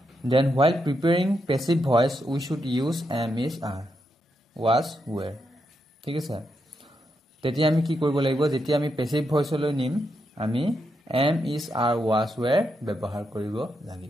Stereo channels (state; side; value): normal; both; correlation 0.83